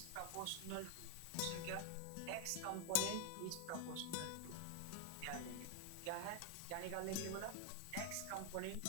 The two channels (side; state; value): both; different; correlation 0.00